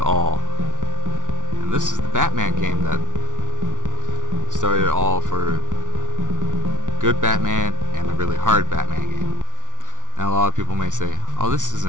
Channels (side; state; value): left; late; 0.87 ms